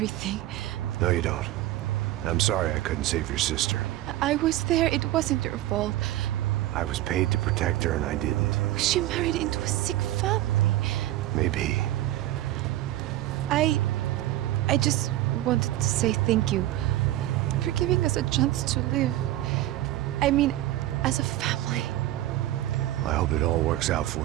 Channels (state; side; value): quieter; left; 15.0 dB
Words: No, you don't. I'm sorry I couldn't save your sister. I was there. It wasn't your fault. I was paid to protect her and I didn't. She married into a sick family. Maybe. I just wanted to say thank you for giving us a chance to live. I mean, as a family. I hope it all works out